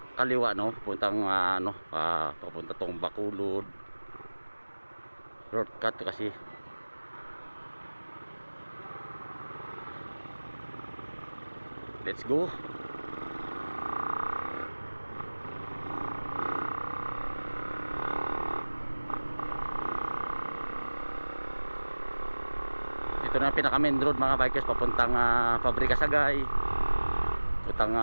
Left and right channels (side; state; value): both; inverted; correlation -1.00